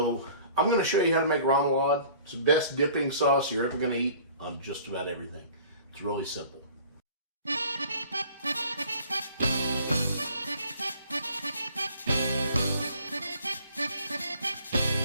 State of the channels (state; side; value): inverted; both; correlation -0.50